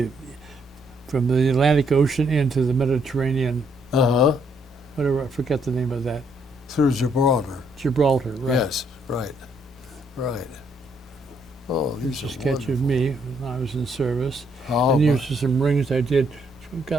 from the Atlantic Ocean into the Mediterranean. Uh-huh. Whatever, I forget the name of that. Through Gibraltar. Gibraltar, right? Yes, right. Right. Oh, Here's these a are sketch of me when I was in service. wonderful. And here's just some rings I did.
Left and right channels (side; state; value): both; normal; correlation 0.71